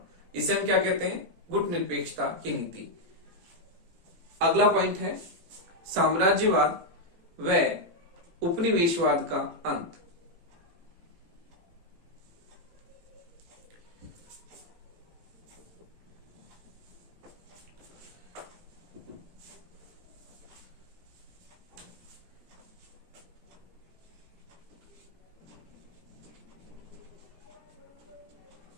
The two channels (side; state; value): left; late; 18 ms